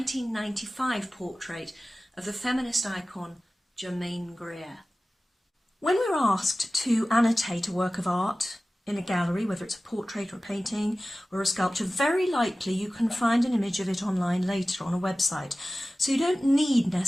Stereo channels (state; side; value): normal; both; correlation 0.96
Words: portrait of the feminist icon Germaine Greer. When we're asked to annotate a work of art in a gallery, whether it's a portrait or a painting or a sculpture, very likely you can find an image of it online later on a website. So you don't need